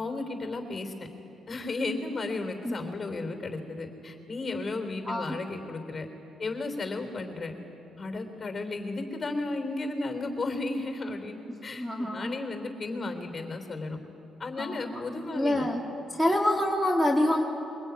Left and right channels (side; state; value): both; normal; correlation 0.89